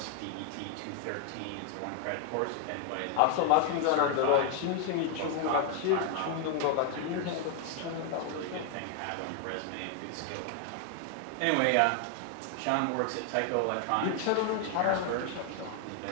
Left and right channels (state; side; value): different; both; correlation 0.01